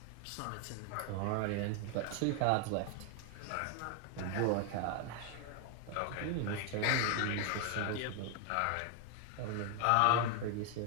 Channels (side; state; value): both; different; correlation 0.01